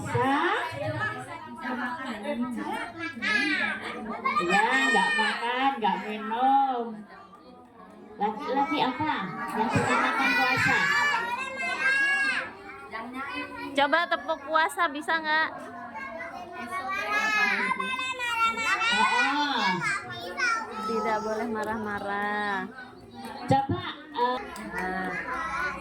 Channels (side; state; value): both; identical; correlation 1.00